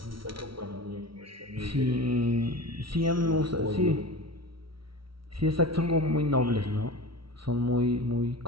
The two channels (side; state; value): left; late; 0.74 ms